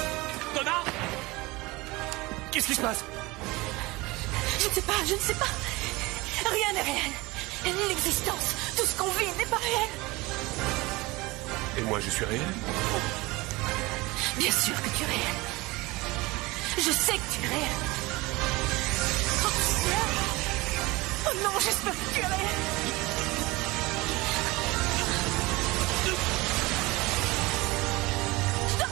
2, Donna! Qu'est-ce qui se passe? Je ne sais pas. Rien n'est réel. L'existence, tout ce qu'on vit n'est pas réel. Et moi, je suis réel? Bien sûr que tu es réel. Je sais que tu es réel. Oh non, j'espère que tu es réel. Je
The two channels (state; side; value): quieter; left; 22.3 dB